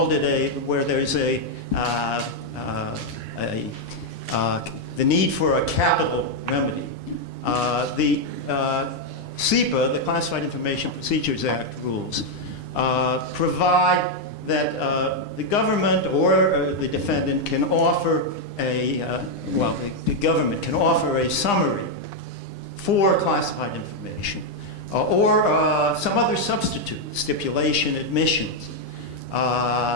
it where there's the need for a capital remedy. The CIPA, the Classified Information Procedures Act rules, provide that the government or the defendant can offer the government can offer a summary for classified information or some other substitute, stipulation, admissions,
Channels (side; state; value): right; late; 9.8 ms